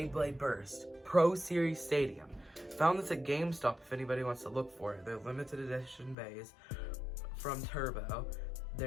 Burst Pro Series Stadium. Found this at GameStop if anybody wants to look for it. They're limited edition bays from Turbo.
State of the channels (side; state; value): right; drops out; at 6.2 s